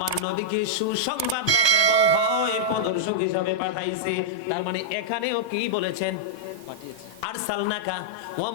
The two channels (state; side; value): late; right; 1.2 ms